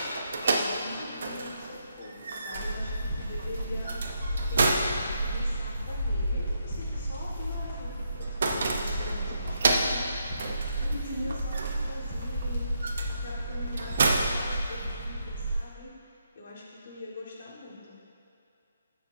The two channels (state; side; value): inverted; both; correlation -0.78